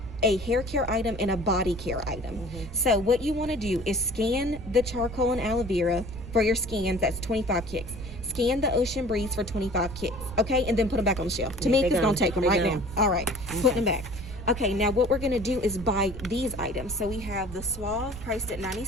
a hair care item and a body care item. So what you want to do is scan the charcoal and aloe vera for your scans. That's 25 kicks. Scan the Ocean Breeze for 25 kicks, okay? And then put them back on the shelf. Tamika's going to take them right now. All right, putting them back. Okay, now what we're going to do is buy these items. So we have the Suave priced at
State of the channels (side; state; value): right; noise; rumble, 12 dB below the sound